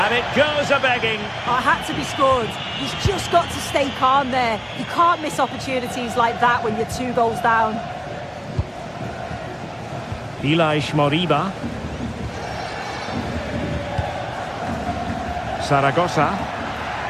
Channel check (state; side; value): identical; both; correlation 1.00